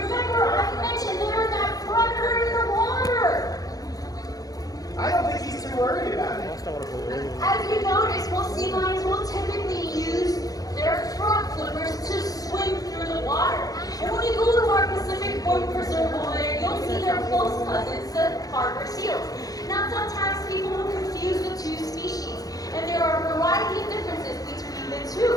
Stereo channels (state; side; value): late; right; 0.18 ms